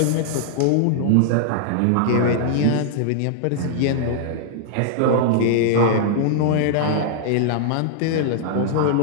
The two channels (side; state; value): both; different; correlation -0.01